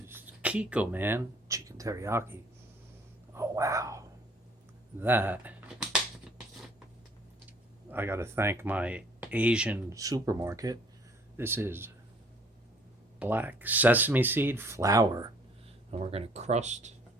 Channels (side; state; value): both; normal; correlation 0.58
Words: Kikkoman chicken teriyaki. Oh wow. That, I gotta thank my Asian supermarket. This is black sesame seed flour. And we're gonna crust